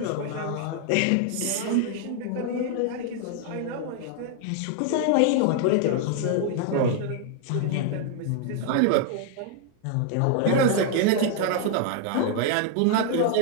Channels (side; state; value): both; different; correlation 0.00